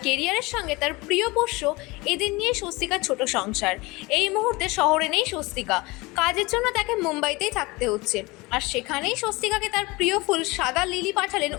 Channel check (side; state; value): right; quieter; 23.5 dB